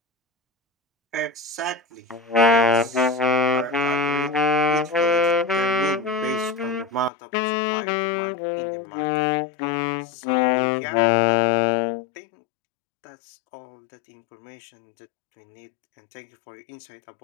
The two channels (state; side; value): drops out; right; at 7.1 s